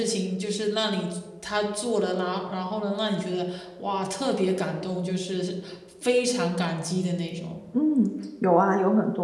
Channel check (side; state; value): both; identical; correlation 1.00